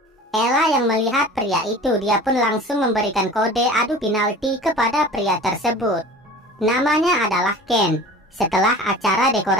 Ella yang melihat pria itu, dia pun langsung memberikan kode adu penalti kepada pria tersebut. Namanya adalah Ken. Setelah acara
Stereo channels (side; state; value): both; normal; correlation 0.40